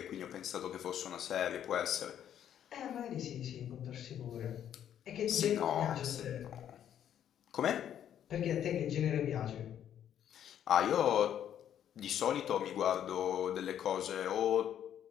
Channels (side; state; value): right; quieter; 10.0 dB